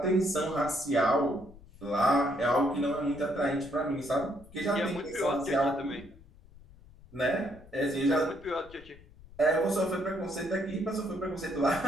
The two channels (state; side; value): noise; left; rumble, 22 dB below the sound